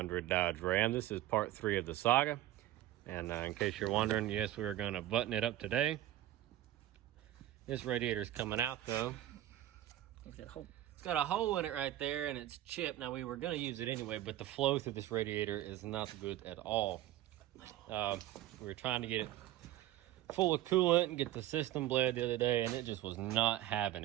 Dodge Ram. This is part 3 of the saga. And in case you're wondering, yes, we are going to button it up today. This radiator is coming out though. Look at that hole. It's got a hole in it right there and it's chipped. Now we were going to use it anyway, but the flow through this radiator is not good at all. We were trying to get it full of coolant and get the system bled the other day, and it just was not having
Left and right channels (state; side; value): quieter; left; 14.2 dB